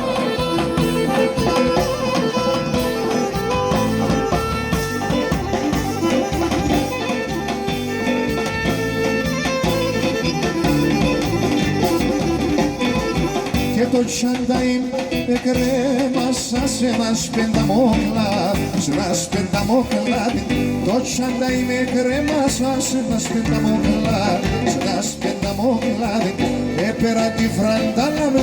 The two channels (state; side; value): identical; both; correlation 1.00